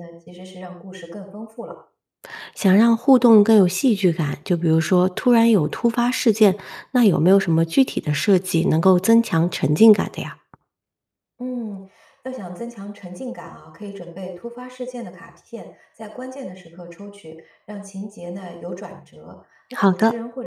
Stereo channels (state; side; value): identical; both; correlation 1.00